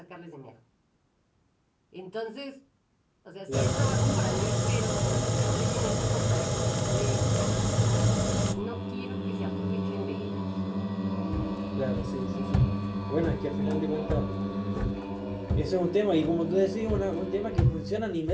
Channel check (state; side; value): identical; both; correlation 1.00